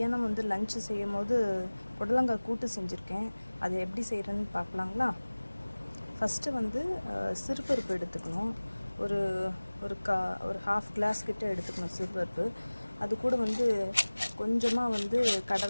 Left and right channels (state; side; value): inverted; both; correlation -1.00